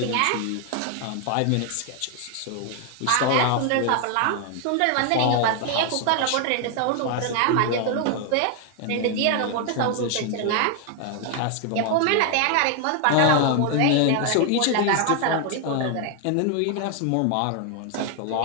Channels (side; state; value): both; different; correlation 0.00